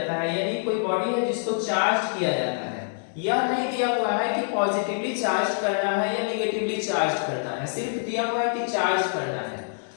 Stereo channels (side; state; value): right; silent; digital silence